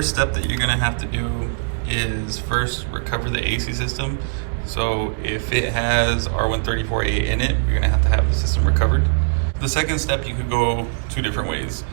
step that you're gonna have to do is first recover the AC system. So if it has R134A in it, you're gonna have to have the system recovered. The second step, you could go two different ways.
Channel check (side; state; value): left; silent; digital silence